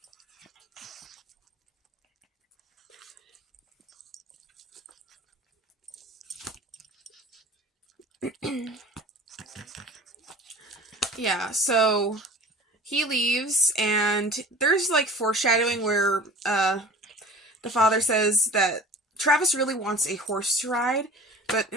Yeah, so he leaves, and there's like foreshadowing where the father says that Travis really wants a horse to ride, but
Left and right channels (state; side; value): normal; both; correlation 0.41